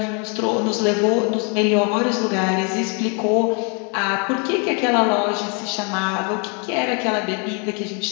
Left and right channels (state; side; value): quieter; right; 35.6 dB